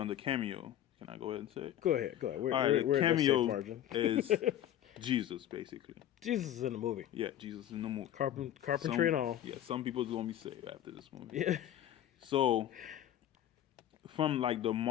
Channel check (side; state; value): right; quieter; 11.6 dB